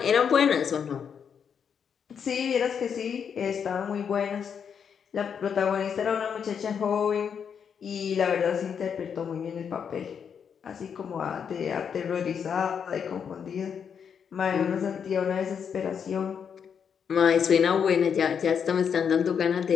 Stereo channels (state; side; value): quieter; right; 7.2 dB